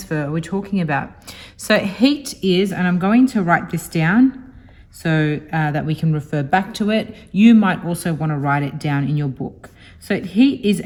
are we talking about? So heat is, and I'm going to write this down so that we can refer back to it. You might also want to write it down in your book. So heat is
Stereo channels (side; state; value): both; identical; correlation 1.00